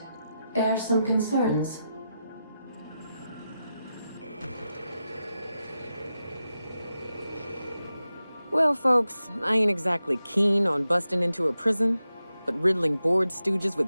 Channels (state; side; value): inverted; both; correlation -0.89